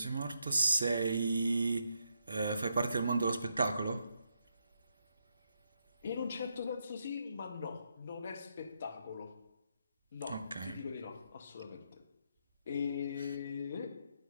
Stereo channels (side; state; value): both; inverted; correlation -0.80